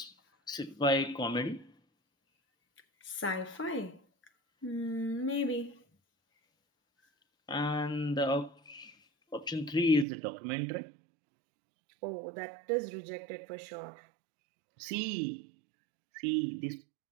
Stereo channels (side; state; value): left; drops out; at 10.1 s